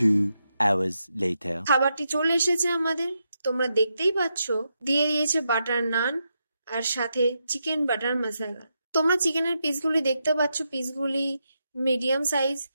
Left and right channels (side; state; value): both; inverted; correlation -0.84